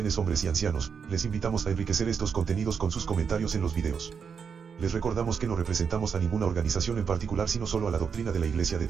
hombres y ancianos. Les invitamos a enriquecer estos contenidos con sus comentarios en los videos. Les recordamos que no representamos a ninguna organización en particular, sino solo a la doctrina de la Iglesia de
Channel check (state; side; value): quieter; left; 6.4 dB